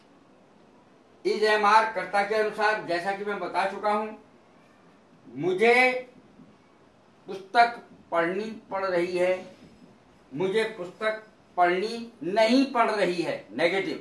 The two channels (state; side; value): identical; both; correlation 1.00